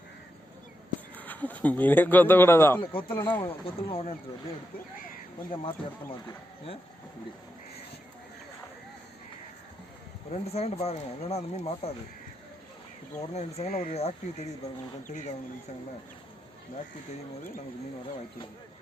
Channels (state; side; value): normal; both; correlation 0.85